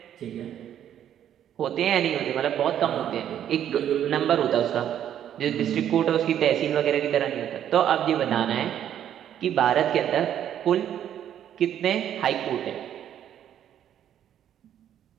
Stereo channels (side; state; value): left; quieter; 10.3 dB